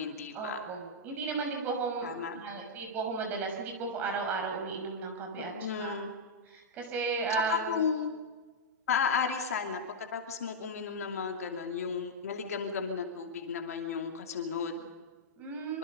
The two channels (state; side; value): normal; both; correlation -0.08